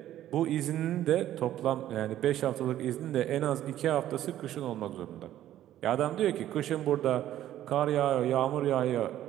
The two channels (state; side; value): quieter; left; 12.6 dB